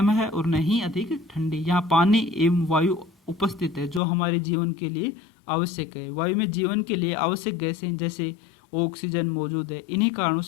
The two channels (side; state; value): right; drops out; at 4.0 s